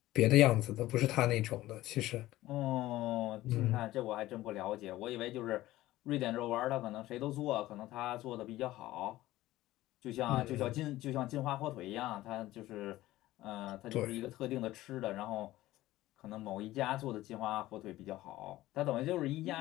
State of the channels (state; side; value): quieter; right; 16.3 dB